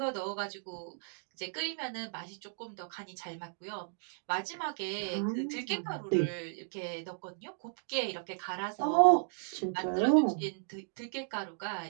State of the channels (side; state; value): left; silent; digital silence